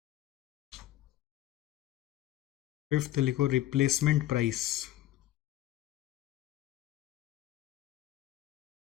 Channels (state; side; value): quieter; right; 14.0 dB